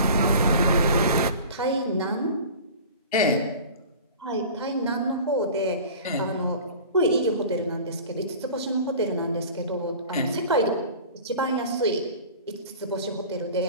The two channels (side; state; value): both; inverted; correlation -0.40